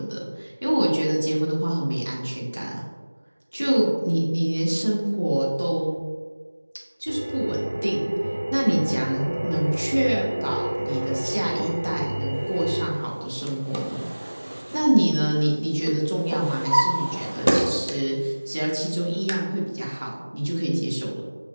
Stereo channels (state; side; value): inverted; both; correlation -1.00